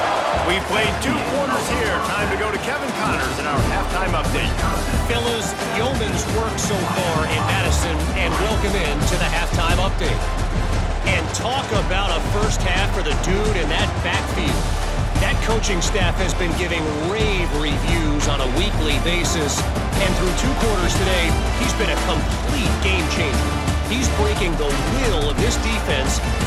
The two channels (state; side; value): identical; both; correlation 1.00